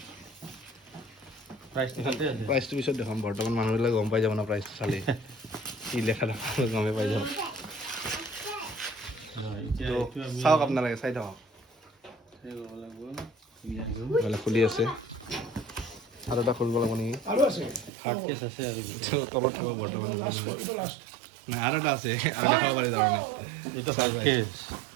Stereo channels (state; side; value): drops out; left; at 17.9 s